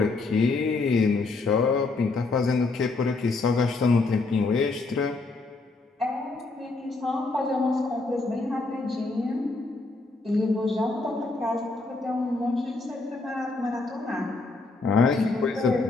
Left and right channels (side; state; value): right; quieter; 3.5 dB